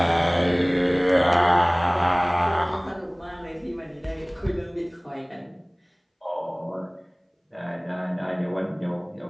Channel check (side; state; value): both; identical; correlation 1.00